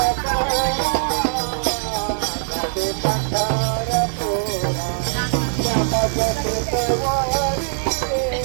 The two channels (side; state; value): left; silent; digital silence